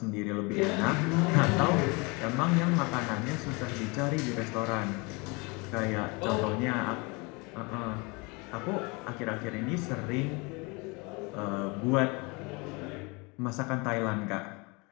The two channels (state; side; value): quieter; right; 28.1 dB